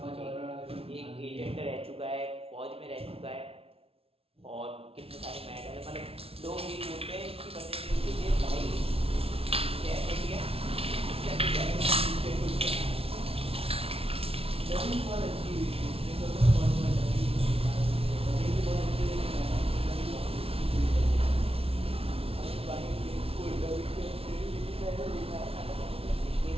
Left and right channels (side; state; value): left; late; 0.28 ms